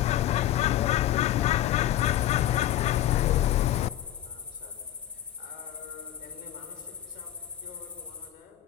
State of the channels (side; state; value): right; quieter; 12.6 dB